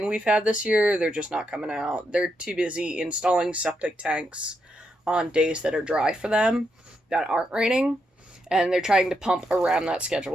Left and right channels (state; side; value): normal; both; correlation 0.81